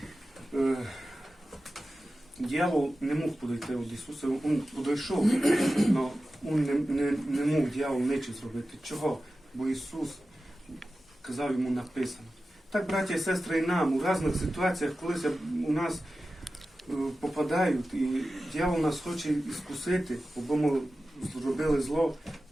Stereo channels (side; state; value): both; normal; correlation 0.94